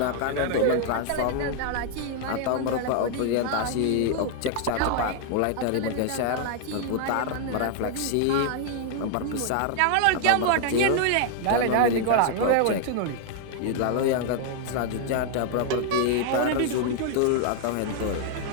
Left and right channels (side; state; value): both; different; correlation 0.00